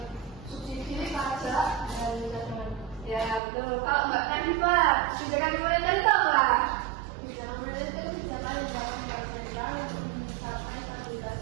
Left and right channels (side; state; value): left; drops out; at 3.4 s